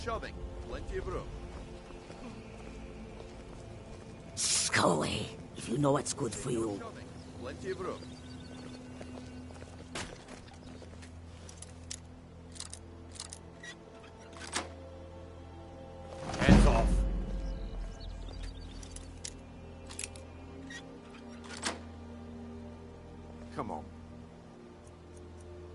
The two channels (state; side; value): identical; both; correlation 1.00